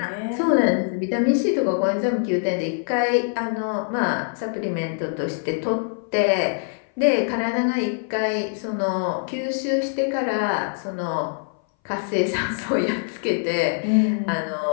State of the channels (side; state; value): right; silent; 59 dB below the other